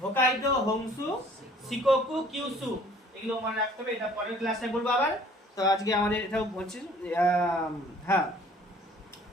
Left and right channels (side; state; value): both; normal; correlation 0.54